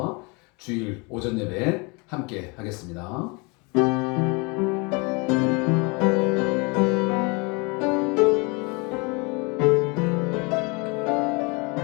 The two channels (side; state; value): right; quieter; 29.5 dB